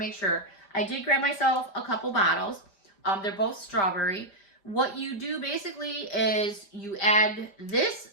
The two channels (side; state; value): right; late; 5.1 ms